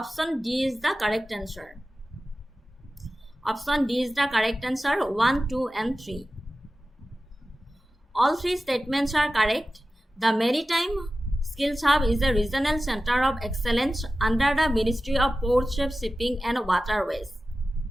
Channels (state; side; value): normal; both; correlation 0.95